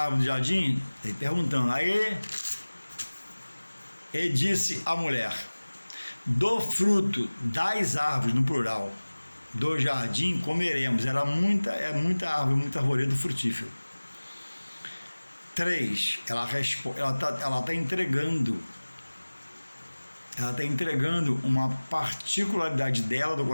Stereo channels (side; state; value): both; inverted; correlation -1.00